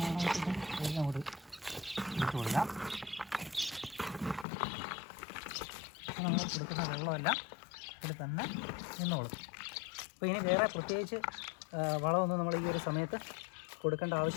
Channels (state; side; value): drops out; right; at 4.5 s